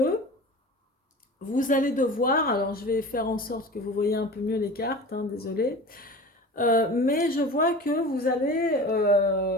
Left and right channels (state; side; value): normal; both; correlation 0.36